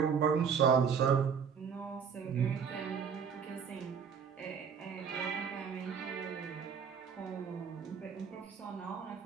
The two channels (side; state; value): left; quieter; 6.8 dB